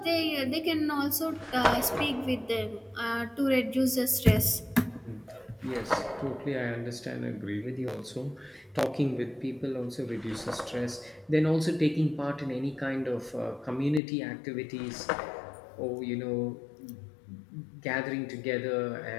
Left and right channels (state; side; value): drops out; right; at 14.0 s